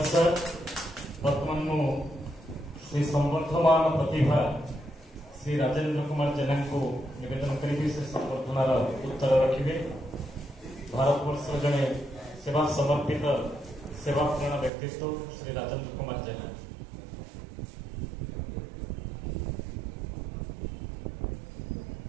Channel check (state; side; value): drops out; left; at 14.7 s